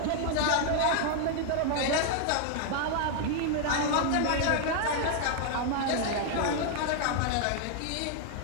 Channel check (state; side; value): different; both; correlation 0.00